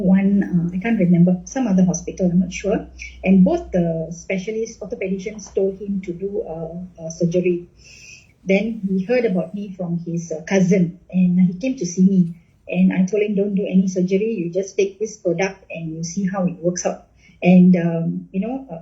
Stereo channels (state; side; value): identical; both; correlation 1.00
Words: I can't remember, some other hospital, I'm not sure. And both the specialists, orthopedicians, told him to do surgery. Then he heard about me from his cousin, and he came to see me. And I told him, don't do any surgery. You just take this product and you see how it works out. And,